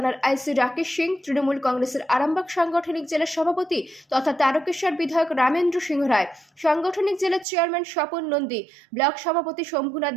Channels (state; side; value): drops out; left; at 7.5 s